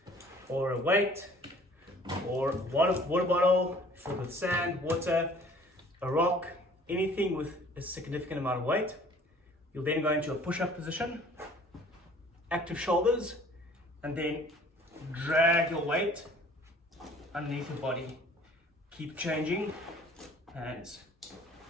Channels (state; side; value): normal; both; correlation 0.52